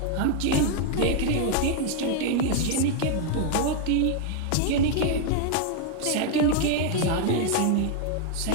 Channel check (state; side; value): different; both; correlation 0.00